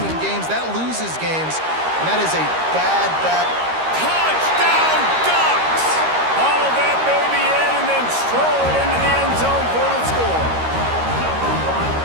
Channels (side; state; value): left; late; 13 ms